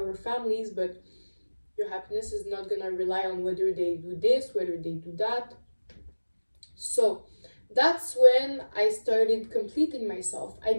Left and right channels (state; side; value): inverted; both; correlation -1.00